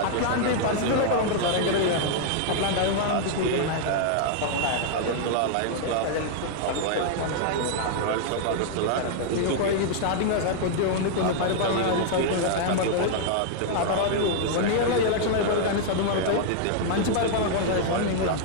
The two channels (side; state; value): both; different; correlation -0.01